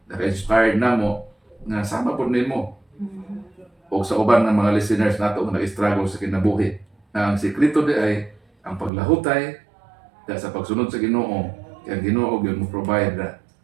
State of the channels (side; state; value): left; drops out; at 8.9 s